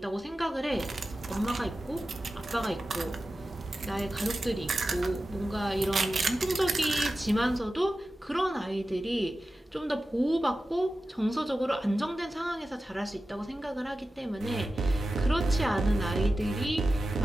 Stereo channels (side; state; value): both; normal; correlation 0.94